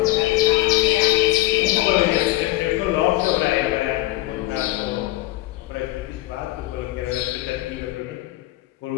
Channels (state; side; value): quieter; right; 17.3 dB